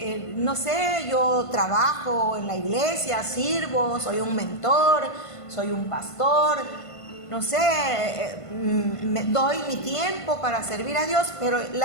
no sé, yo trabajo en la iglesia, sirvo, soy un mentor, soy un pastor, no sé, me doy mi tiempo para servir a Dios, pero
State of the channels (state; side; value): late; right; 1.5 ms